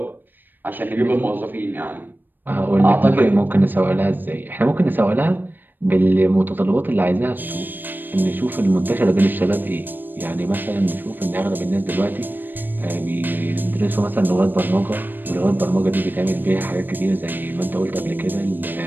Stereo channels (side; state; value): left; late; 0.092 ms